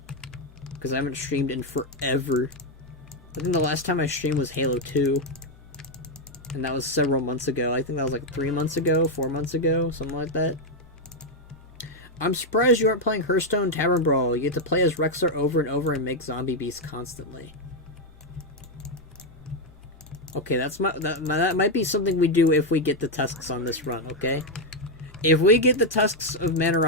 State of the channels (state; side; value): normal; both; correlation 0.03